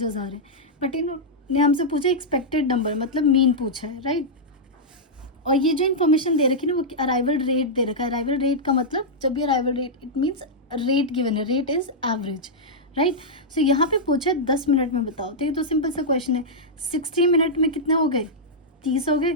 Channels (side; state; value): both; normal; correlation -0.08